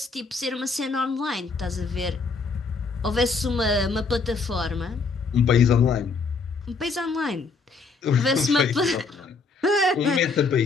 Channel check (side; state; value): right; quieter; 4.4 dB